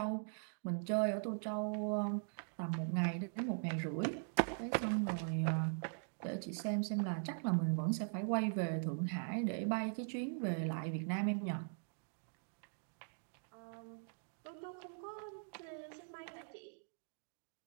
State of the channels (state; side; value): silent; left; digital silence